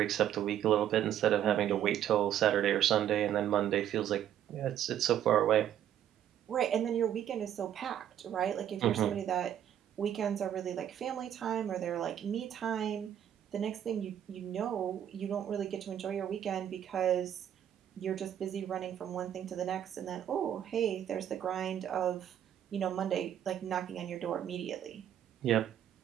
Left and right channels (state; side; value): quieter; left; 10.4 dB